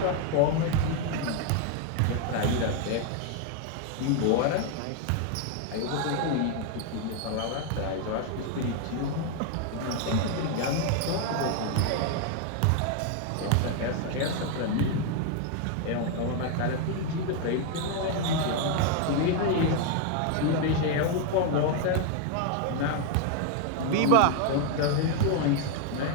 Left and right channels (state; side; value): different; both; correlation 0.01